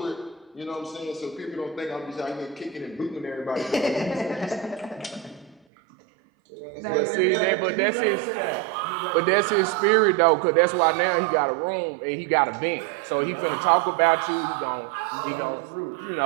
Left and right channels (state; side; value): drops out; left; at 5.6 s